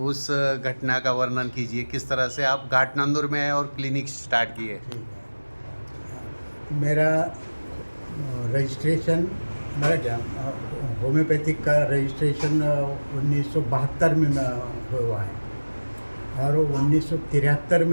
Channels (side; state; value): both; inverted; correlation -1.00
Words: उस घटना का वर्णन कीजिए, किस तरह से आप घाट नांदूर में आए और क्लिनिक स्टार्ट किए। मेरा रजिस्ट्रेशन मेरा क्या होम्योपैथिक का रजिस्ट्रेशन 1972 में हुआ है और 1973